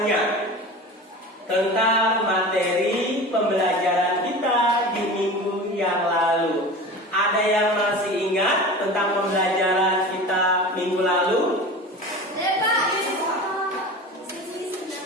tentang materi pembelajaran kita di minggu yang lalu. Ada yang masih ingat tentang pembelajaran kita minggu lalu?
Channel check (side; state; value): both; normal; correlation 0.34